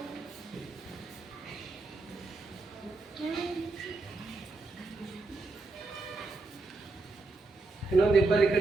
ಇನ್ನೊಂದು ಇಬ್ಬರು ಈ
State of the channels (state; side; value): quieter; left; 3.5 dB